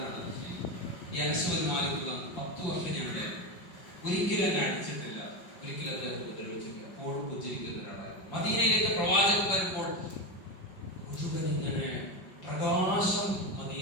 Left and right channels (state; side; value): late; right; 5.3 ms